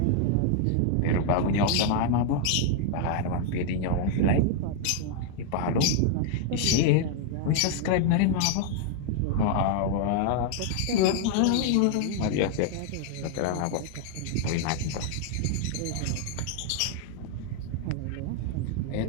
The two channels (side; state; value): both; different; correlation 0.00